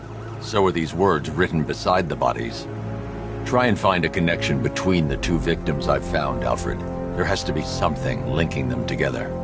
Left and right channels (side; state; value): both; identical; correlation 1.00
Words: So are these words written beside the bodies. Try and find a connection between the 2 victims I've found, Alfred. There has to be something linking them together.